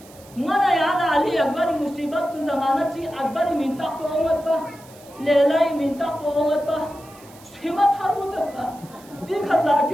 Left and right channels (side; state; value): right; noise; hiss, 24 dB below the sound